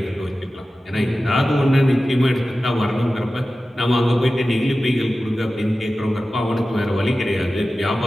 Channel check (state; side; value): normal; both; correlation 0.95